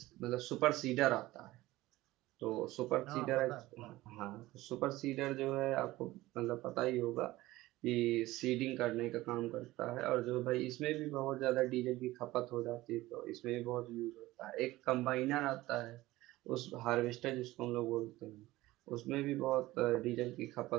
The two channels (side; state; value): left; quieter; 17.8 dB